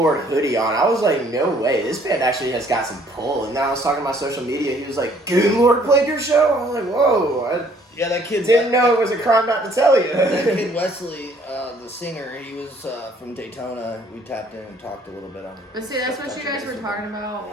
hoodie on. I was like, no way, this band actually has got some pull. And then I was talking to my social media, he was like, Goonlord played your show? I was like, whoa. Yeah, that kid Didn't know it was a crime not to tell you. that kid Wesley, the singer, he was from Daytona. We tapped in and talked a little bit on it. But see, that's what you guys were talking about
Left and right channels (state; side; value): normal; both; correlation 0.61